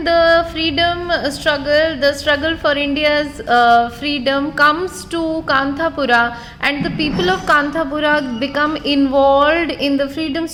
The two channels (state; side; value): identical; both; correlation 1.00